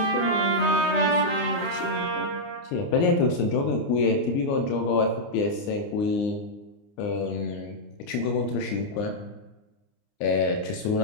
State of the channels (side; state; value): right; late; 29 ms